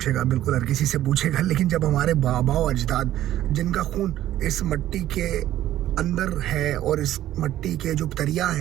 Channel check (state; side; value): quieter; left; 13.2 dB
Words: बिल्कुल हर किसी से पूछेगा, लेकिन जब हमारे बाबा और अजदाद, जिनका खून इस मिट्टी के अंदर है, और इस मिट्टी के जो